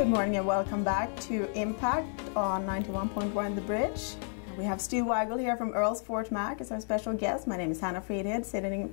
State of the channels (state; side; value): silent; right; 57 dB below the other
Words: morning and welcome back to Impact on 91.1 The Bridge. We have Stu Wigle here from Earl's Fort Mac as our special guest. My name is Hanna Fridhed,